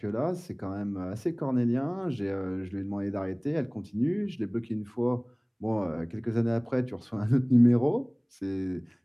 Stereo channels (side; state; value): both; identical; correlation 1.00